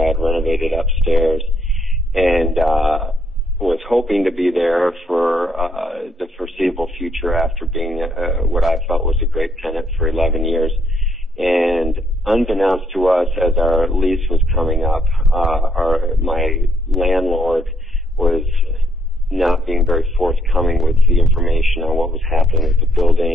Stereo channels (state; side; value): normal; both; correlation 0.71